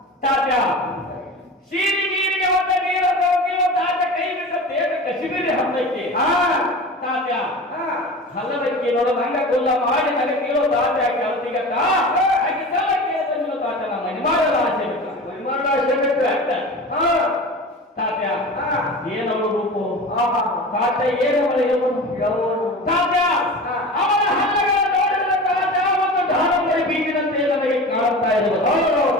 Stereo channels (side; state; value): both; normal; correlation 0.33